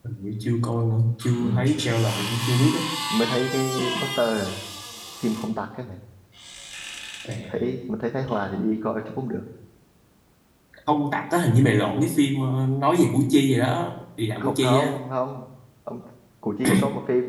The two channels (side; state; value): both; identical; correlation 1.00